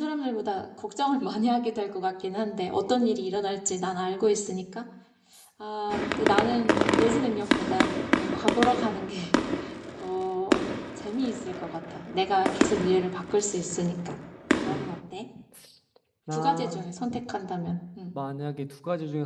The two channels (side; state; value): both; identical; correlation 1.00